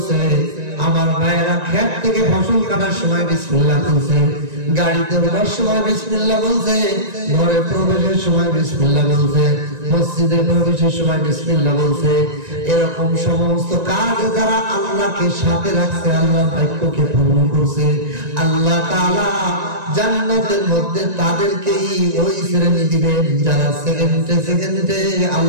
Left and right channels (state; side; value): late; left; 1.9 ms